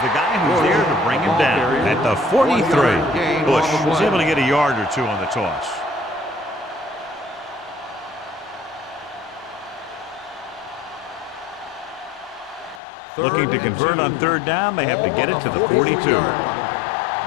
guy who's there to bring him down at the 43. Bush was able to get a yard or two on the toss. Looking to convert on third down, they have to get it to the 42. One more,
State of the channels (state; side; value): drops out; right; at 12.8 s